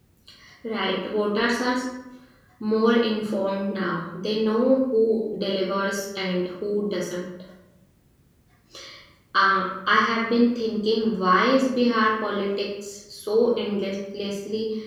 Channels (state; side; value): identical; both; correlation 1.00